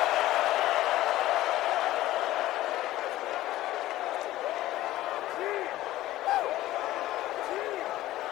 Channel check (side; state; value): right; quieter; 15.5 dB